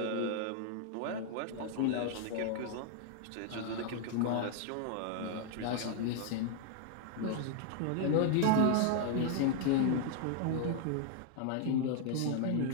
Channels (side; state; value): both; different; correlation 0.00